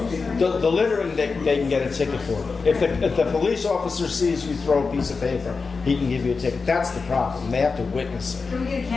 The littering, they can get a ticket for. If the police officer sees you throw a piece of paper, he can give you a ticket. That's the problem. They have to witness it. Can we get a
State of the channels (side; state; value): right; quieter; 4.6 dB